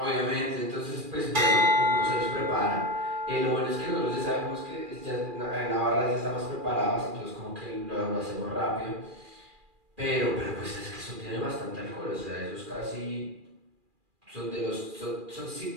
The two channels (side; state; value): left; late; 2.4 ms